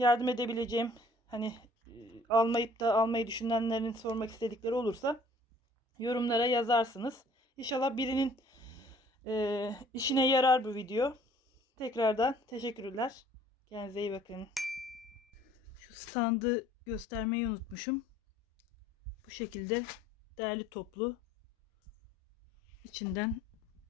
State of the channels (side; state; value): both; normal; correlation 0.55